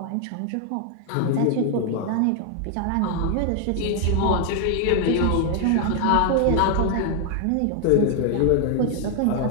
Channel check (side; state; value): both; different; correlation 0.00